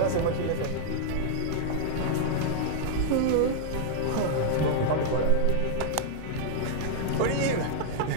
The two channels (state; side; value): different; both; correlation -0.01